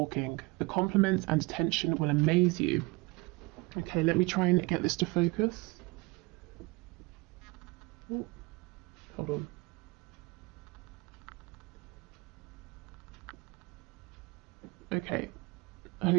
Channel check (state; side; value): quieter; left; 25.0 dB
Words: The compliments and attention will amaze you. Okay, let me try and get this to focus. Ooh, hold on. Okay,